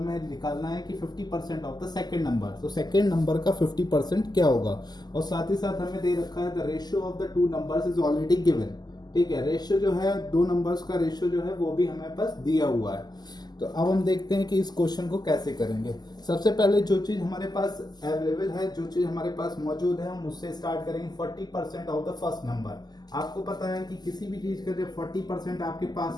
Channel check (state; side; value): late; right; 0.20 ms